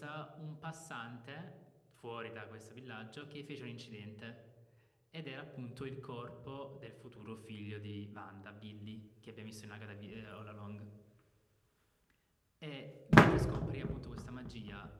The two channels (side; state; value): both; identical; correlation 1.00